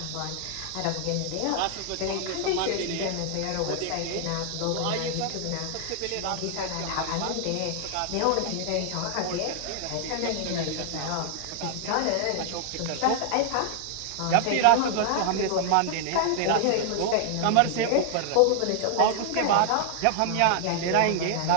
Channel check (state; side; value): different; both; correlation 0.00